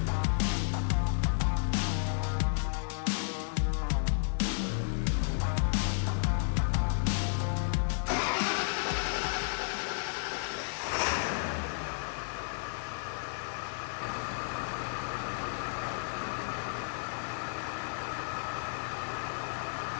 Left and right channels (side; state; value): right; silent; digital silence